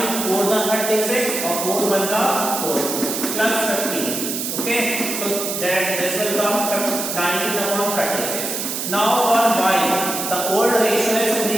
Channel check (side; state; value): right; noise; hiss, 3 dB below the sound